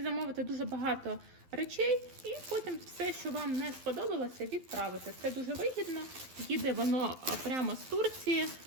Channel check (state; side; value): late; left; 12 ms